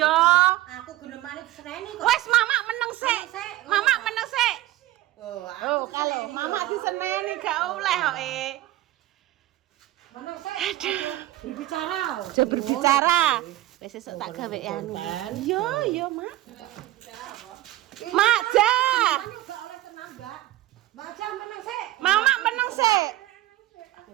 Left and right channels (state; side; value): quieter; left; 15.9 dB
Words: Aku genemane diseneni kok. Wes mama meneng sik. Mama meneng sik. Oh, kalau mama diseneni gak oleh kok Mana sih? Berbicara. Aja berbicara. Wis sesuk tak gawe anu. Yo, Mak. Mak Jah. Baca menang sih. Mama meneng sik.